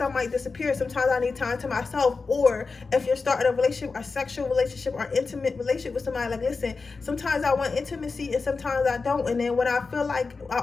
I might disappear, sometimes I need time to myself. Or if you're starting a relationship, a sexual relationship, or intimate relationship with somebody, like, listen, sometimes I want intimacy and sometimes I don't. And then when I feel like I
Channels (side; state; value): right; quieter; 4.3 dB